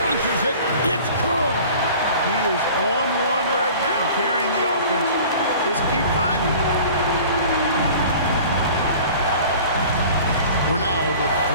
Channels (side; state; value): both; inverted; correlation -0.45